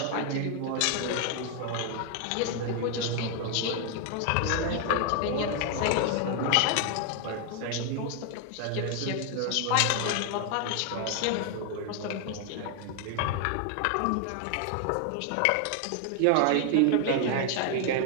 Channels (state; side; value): different; both; correlation 0.00